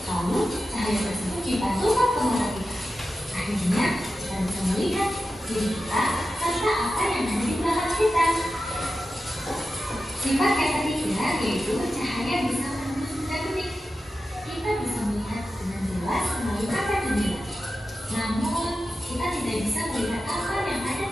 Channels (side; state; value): both; normal; correlation 0.92